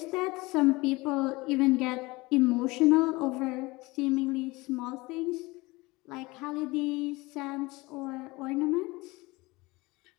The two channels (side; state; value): right; quieter; 22.6 dB